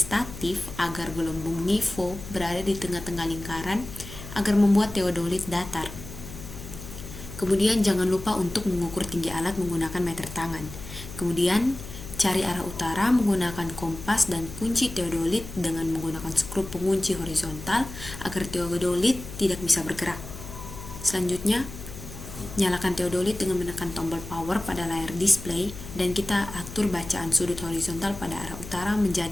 agar gelembung nifo berada di tengah-tengah lingkaran agar membuat teodolit datar. Kemudian jangan lupa untuk mengukur tinggi alat menggunakan meter tangan. Kemudian cari arah utara menggunakan kompas dan kunci teodolit dengan menggunakan skru pengunci horizontal agar teodolit tidak bisa bergerak. Selanjutnya, nyalakan teodolit dengan menekan tombol power pada layar display dan kita atur bacaan sudut horizontal pada arah utara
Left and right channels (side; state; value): left; noise; hum, 12 dB below the sound